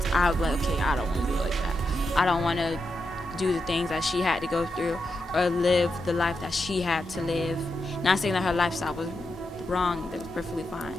I would be like, okay, I don't want to do it like that. I don't want to do the things that she had to go through or live the life that she had to live. Not saying that her lifestyle was wrong, that was perfectly fine,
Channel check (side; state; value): both; normal; correlation 0.86